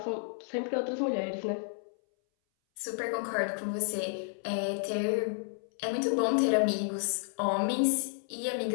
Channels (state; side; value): silent; right; 57 dB below the other